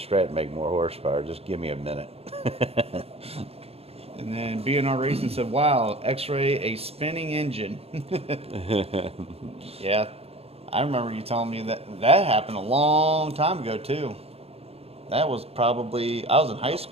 make more horsepower. Just give me a minute. And then B&R Racing said, wow, X-Ray, a spinning engine. Yeah, I remember you telling me that happened a long time ago, too. That was probably, I was in high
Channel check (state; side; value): late; left; 0.29 ms